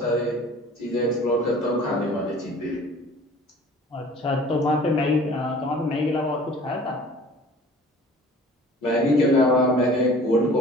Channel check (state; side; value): normal; both; correlation 0.47